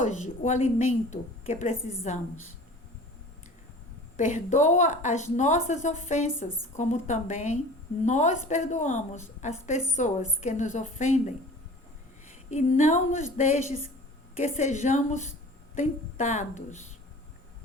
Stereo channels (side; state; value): both; normal; correlation 0.43